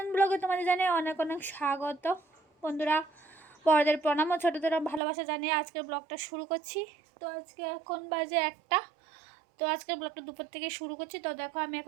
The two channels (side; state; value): left; drops out; at 5.0 s